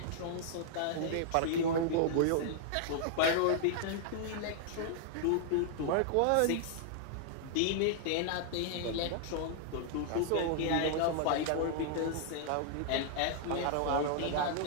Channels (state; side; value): different; both; correlation -0.01